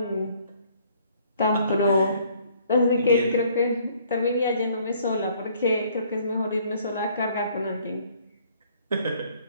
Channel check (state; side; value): inverted; both; correlation -0.61